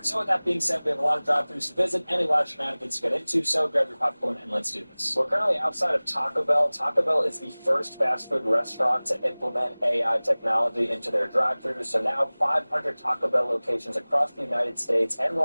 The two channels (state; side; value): inverted; both; correlation -1.00